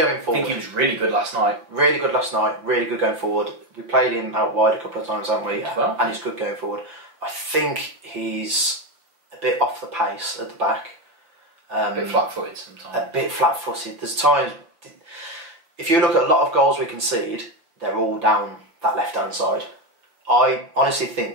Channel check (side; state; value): left; late; 6.0 ms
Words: forward. I think he was really good last night. Really good last night. Really good going forward. We played him out wide a couple of times, haven't we? Well. And he's good going forward. I think he's a bit off the pace at the back. A bit flat-footed sometimes. A bit flat-footed. There's times, if you look at a lot of goals we concede, they're all down that left-hand side. I honestly